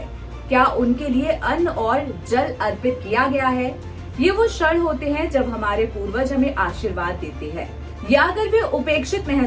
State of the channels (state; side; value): identical; both; correlation 1.00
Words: क्या उनके लिए अन्न और जल अर्पित किया गया है। ये वो क्षण होते हैं जब हमारे पूर्वज हमें आशीर्वाद देते हैं, या अगर वे उपेक्षित